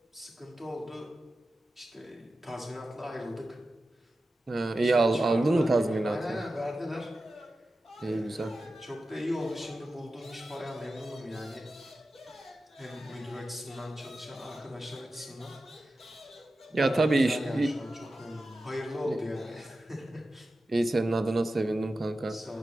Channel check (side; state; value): both; normal; correlation 0.93